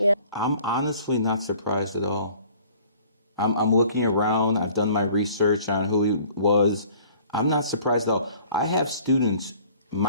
I'm honestly not surprised at all. I'm looking around. I've done my research on who he was. I'm not surprised at all. I have students,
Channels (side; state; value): both; inverted; correlation -0.53